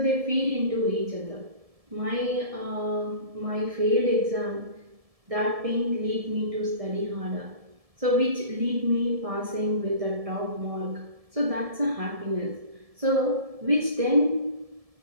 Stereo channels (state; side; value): late; left; 1.7 ms